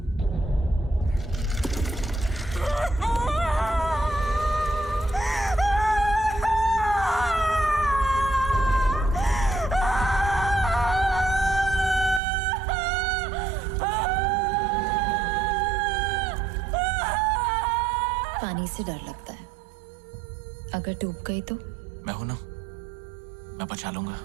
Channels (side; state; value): left; drops out; at 12.2 s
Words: पानी से डर लगता है, अगर डूब गई तो? मैं हूं ना, मैं बचा लूंगा।